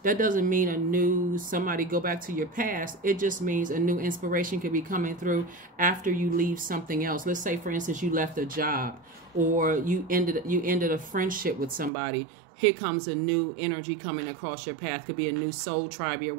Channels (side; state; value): left; drops out; at 11.9 s